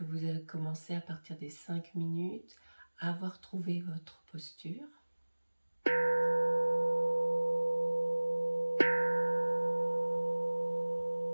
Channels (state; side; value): inverted; both; correlation -1.00